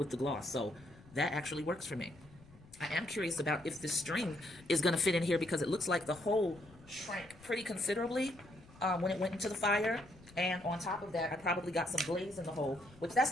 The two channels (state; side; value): noise; left; rumble, 23 dB below the sound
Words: the gloss, so that actually works for me. I am curious about if this string is gonna fit in here because it looks like the hole shrank pretty considerably when it went into the fire. And on top of that, I probably got some glaze in the hole, which that's